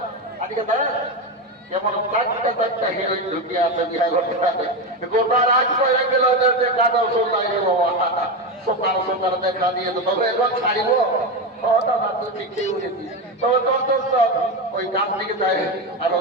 আজকে যেমন চারটা হিরোইন ঢুকিয়ে আছে বিহার গোটা রাত করে গেল কাদা সোনাই রে বাবা, সকাল সকাল দেখা দিয়ে তো তবে এখন ছাড়িব। দাদা তুই ঠিকই উঠেছিস, তবে তোর তোর ওই গান থেকে যায় আর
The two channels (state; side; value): normal; both; correlation 0.15